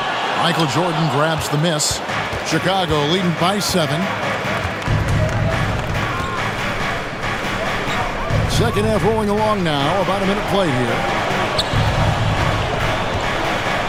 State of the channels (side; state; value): both; identical; correlation 1.00